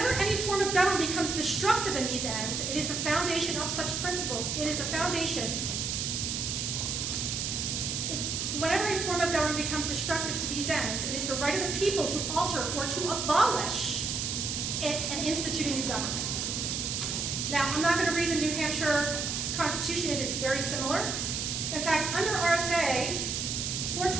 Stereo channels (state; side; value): noise; right; hiss, 1 dB below the sound